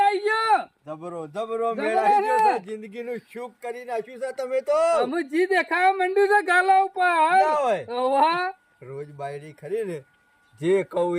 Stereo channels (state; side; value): identical; both; correlation 1.00